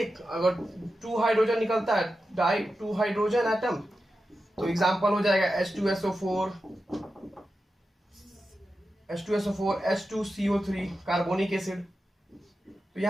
अगर 2 हाइड्रोजन निकलता है डाई 2 हाइड्रोजन एटम, तो एग्जांपल हो जाएगा H2SO4 H2CO3 कार्बोनिक एसिड। तो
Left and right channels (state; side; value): normal; both; correlation 0.91